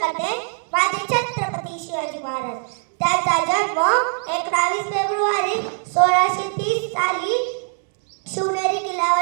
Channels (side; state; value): left; silent; 55 dB below the other